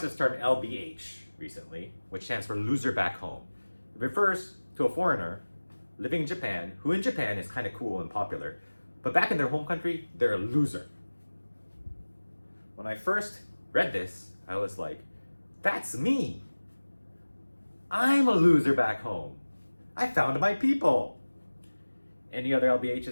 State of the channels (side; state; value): both; inverted; correlation -1.00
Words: this term LBH recently, which stands for loser back home. It refers to a foreigner living in Japan, who in Japan is kind of cool and popular, but back in their home country, they're a loser. When I first read this, I was like, that's me. I'm a loser back home. I found my people. Any other